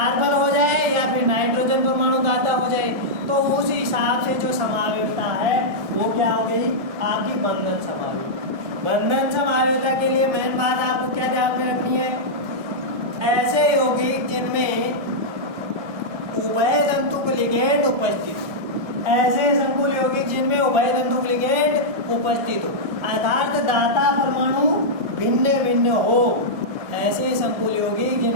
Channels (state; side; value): late; left; 1.6 ms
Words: हो जाए या फिर नाइट्रोजन परमाणु दाता हो जाए, तो उस हिसाब से जो समावेशिता है वो क्या हो गई, आपकी बंधन समावेशिता। बंधन समावेशिता के लिए मेन बात आपको क्या ध्यान में रखनी है, ऐसे यौगिक जिनमें उभय तंतुक लिगेंड उपस्थित, ऐसे संकुल यौगिक जिनमें उभय तंतुक लिगेंड उपस्थित हो, अर्थात दाता परमाणु भिन्न भिन्न हो। ऐसे संकुल यौगिक